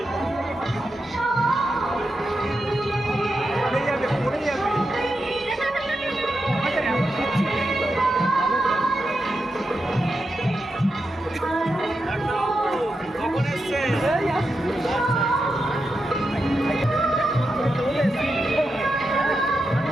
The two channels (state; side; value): normal; both; correlation 0.87